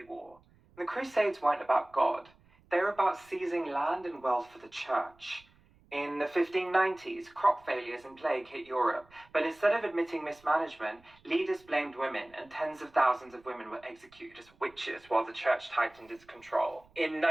war. The Crusades weren't about God. They were about seizing land and wealth for the church. In the 1590s, crop failures and plague hit Europe, but instead of admitting mismanagement, leaders blamed women, and tens of thousands of women were executed as witches while the church tightened its control. In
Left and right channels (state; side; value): noise; right; rumble, 30 dB below the sound